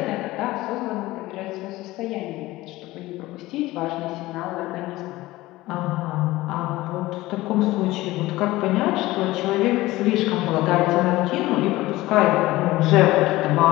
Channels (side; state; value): right; quieter; 18.2 dB